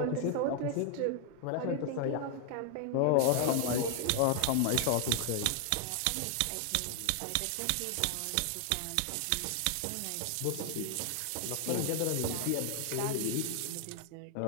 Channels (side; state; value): both; different; correlation 0.00